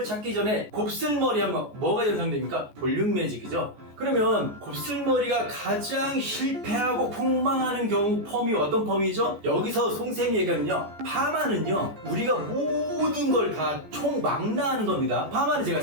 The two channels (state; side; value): late; left; 14 ms